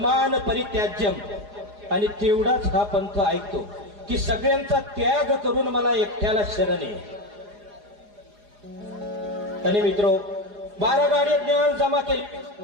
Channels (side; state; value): left; late; 4.9 ms